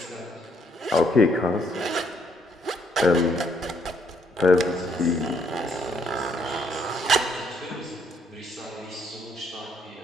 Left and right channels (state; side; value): normal; both; correlation 0.69